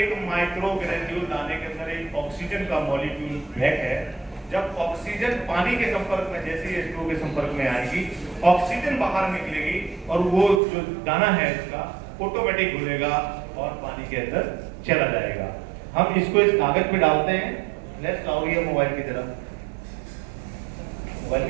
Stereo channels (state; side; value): drops out; left; at 10.6 s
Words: माइक्रो ग्रेन्यूल दाने के अंदर एक ऑक्सीजन का मॉलिक्यूल पैक है। जब ऑक्सीजन पानी के संपर्क में, जैसे ही H2O के संपर्क में आएगी, ऑक्सीजन बाहर निकलेगी और वो जो दाना है इसका ऑटोमेटिक घुलेगा और पानी के अंदर चला जाएगा। हम इसको इस कागज पे डालते हैं। फ्लैश लाओ ये मोबाइल की तरफ, मोबाइल